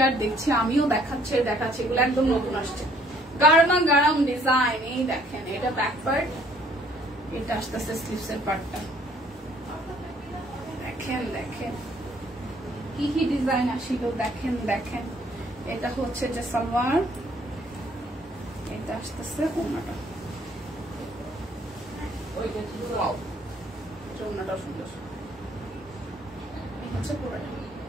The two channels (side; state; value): both; normal; correlation 0.61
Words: আর দেখছি, আমিও দেখাচ্ছি আর দেখাচ্ছি, এগুলো একদম নতুন আসছে, গারমা গারম ডিজাইন। এই দেখেন, এটা ব্যাক পার্ট, এটা আসতেছে স্লিভস এর পার্টটা। দেখেন দেখেন কি কি ডিজাইন আসিল, দেখেন দেখেন। এটা হচ্ছে যে সালোয়ার, এটা আসতেছে ওড়নাটা। ওড়নাটাও সুন্দর। এই হচ্ছে পুরোটা,